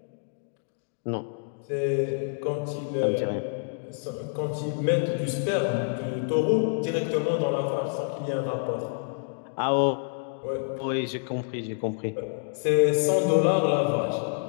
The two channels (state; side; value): silent; right; digital silence